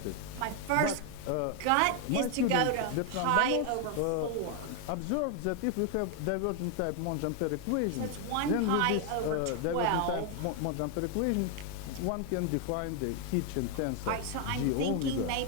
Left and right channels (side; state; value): both; different; correlation 0.01